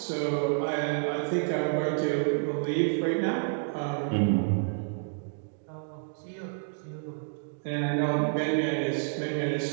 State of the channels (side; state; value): left; silent; digital silence